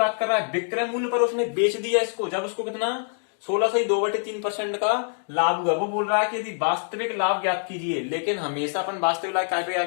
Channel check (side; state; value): right; silent; 62 dB below the other